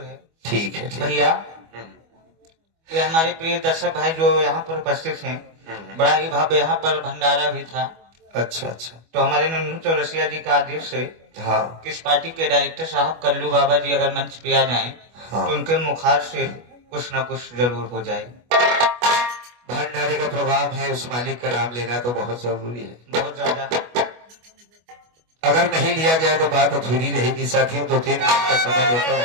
है। ठीक है ठीक है। भैया ये हमारे प्रिय दर्शक भाई जो यहाँ पर उपस्थित हैं, बड़ा ही भव्य यहाँ पर भंडारा भी था। अच्छा अच्छा। तो हमारे नन्नू चौरसिया जी का आदेश है हाँ कि इस पार्टी के डायरेक्टर साहब कल्लू बाबा जी अगर मंच पे आ जाएं, हाँ। तो उनके मुखार से कुछ न कुछ जरूर हो जाए। भंडारे का प्रोग्राम है, उस मालिक का नाम लेना तो बहुत जरूरी है। बहुत ज्यादा। अगर नहीं लिया गया तो बात अधूरी रहेगी। साथियों 2-3 मिनट का समय लेता हूँ।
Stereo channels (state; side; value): late; left; 25 ms